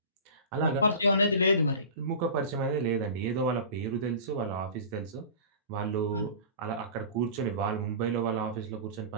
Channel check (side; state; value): both; inverted; correlation -0.35